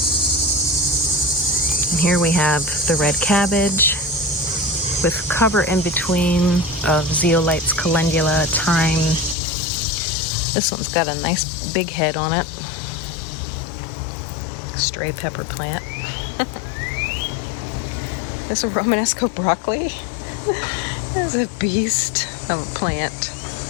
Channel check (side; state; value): right; drops out; at 9.3 s